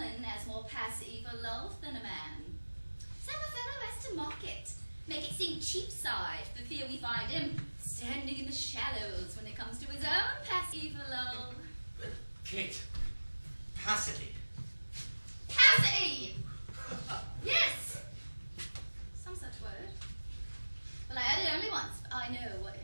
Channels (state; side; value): inverted; both; correlation -1.00